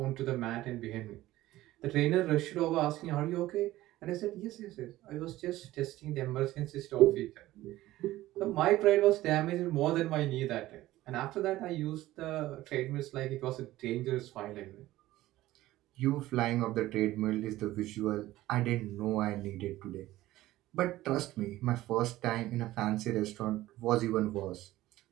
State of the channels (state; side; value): quieter; left; 16.2 dB